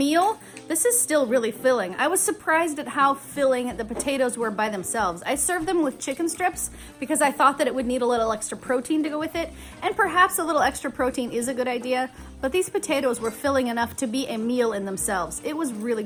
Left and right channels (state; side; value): identical; both; correlation 1.00